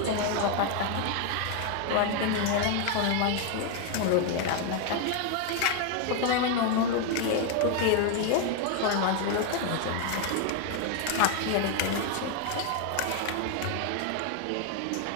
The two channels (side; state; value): both; different; correlation 0.01